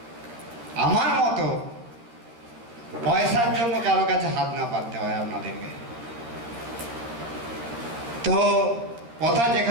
আমার মতো পয়সার জন্য কারো কাছে হাত না পাততে হয় আপনাদেরকে। তো কথা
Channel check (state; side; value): late; left; 13 ms